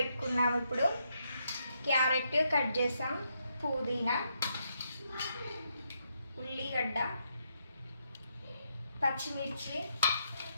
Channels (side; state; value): both; inverted; correlation -0.79